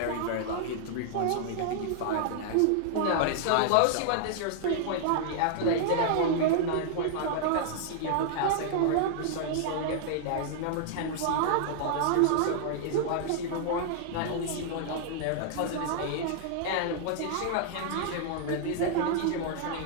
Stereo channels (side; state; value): both; different; correlation -0.01